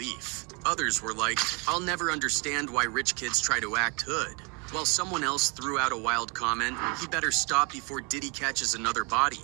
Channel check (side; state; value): left; quieter; 31.6 dB